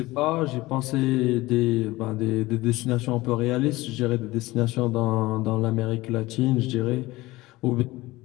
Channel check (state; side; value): quieter; right; 19.5 dB